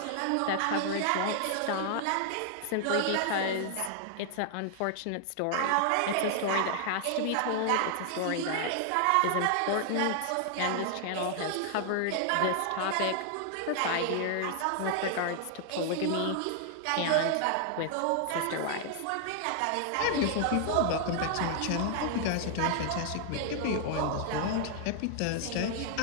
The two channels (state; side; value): different; both; correlation 0.00